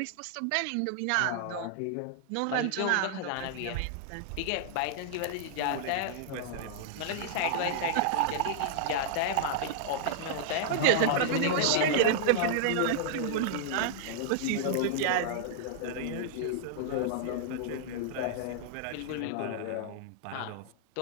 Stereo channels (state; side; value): different; both; correlation -0.01